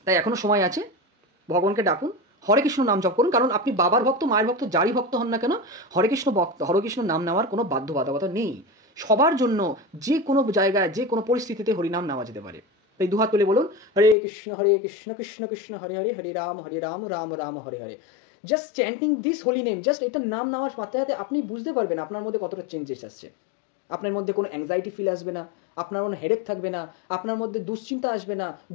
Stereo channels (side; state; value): right; drops out; at 14.2 s